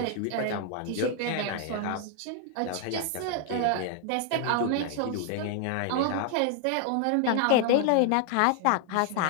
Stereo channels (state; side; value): different; both; correlation 0.00